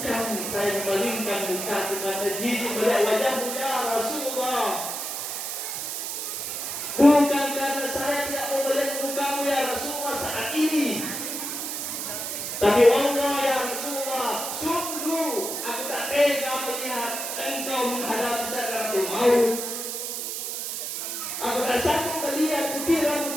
saya memalingkan mukaku karena jijik melihat wajahmu ya Rasulullah. Bukan karena saya tidak mau melihat mukamu ya Rasulullah saat ini. Tapi wallah ya Rasulullah, sungguh aku tak tega melihat engkau menghadapi sakaratul maut. Aku tak sanggup melihat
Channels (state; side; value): noise; right; hiss, 4 dB below the sound